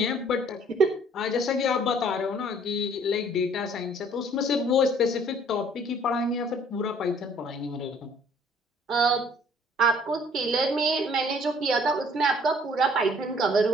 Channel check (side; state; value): both; normal; correlation 0.58